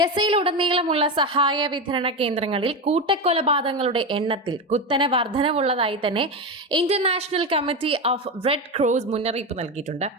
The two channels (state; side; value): normal; both; correlation 0.16